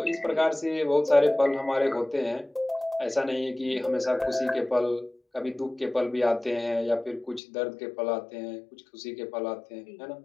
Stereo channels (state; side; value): drops out; right; at 7.4 s